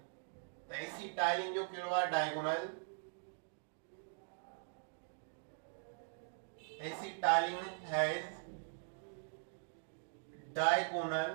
त एसिटाइलिन जो कहिड़ो आहे diagonal acetylene has diagonal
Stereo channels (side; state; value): left; silent; digital silence